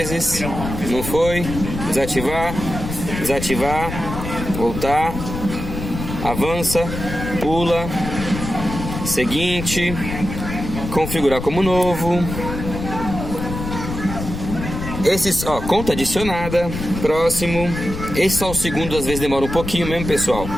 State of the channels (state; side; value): noise; left; rumble, 7 dB below the sound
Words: não foi, desativar, voltar, avança, pula, seguinte, configurar como novo. Esses, ó, conta adicionada, próximo. Esse só o segundo, às vezes demora um pouquinho mesmo, pessoal.